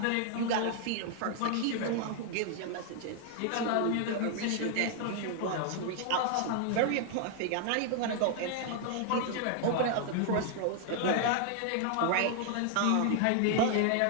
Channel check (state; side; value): different; both; correlation 0.00